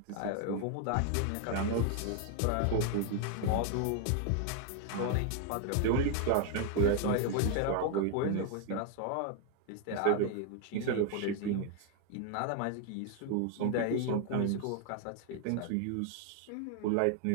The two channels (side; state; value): both; different; correlation 0.01